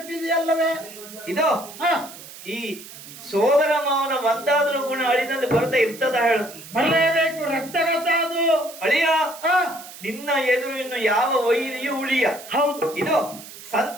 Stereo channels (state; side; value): noise; right; hiss, 16 dB below the sound